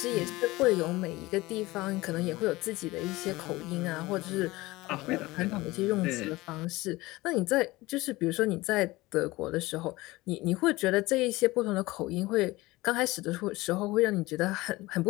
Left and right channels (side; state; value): right; quieter; 20.1 dB